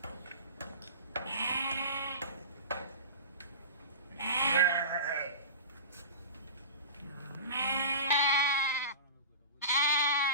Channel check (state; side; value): inverted; both; correlation -0.31